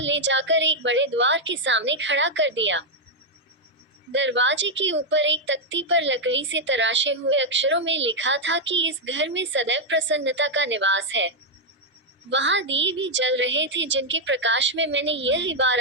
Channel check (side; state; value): both; normal; correlation 0.00